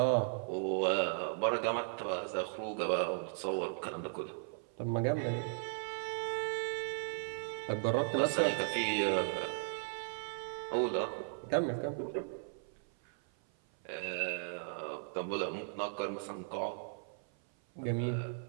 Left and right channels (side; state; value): left; silent; 53 dB below the other